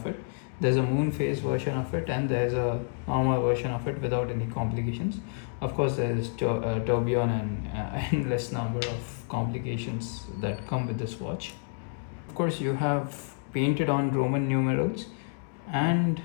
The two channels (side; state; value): right; silent; 59 dB below the other